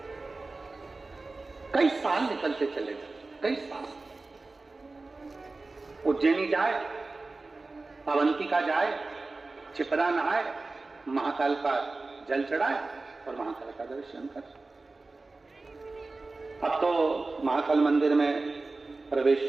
कई साल निकलते चले गए, कई साल। उज्जैनी जाए, अवंतिका जाए, छिपरा नहाए, महाकाल का जल चढ़ाए और महाकाल का दर्शन कर। अब तो महाकाल मंदिर में प्रवेश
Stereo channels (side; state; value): left; quieter; 3.5 dB